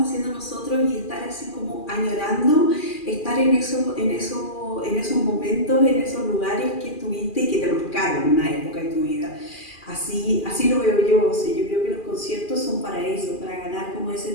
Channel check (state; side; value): late; right; 2.4 ms